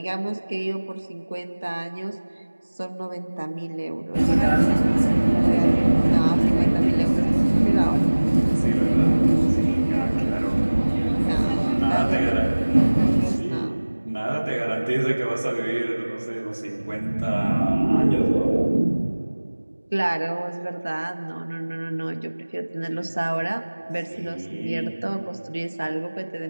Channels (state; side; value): inverted; both; correlation -1.00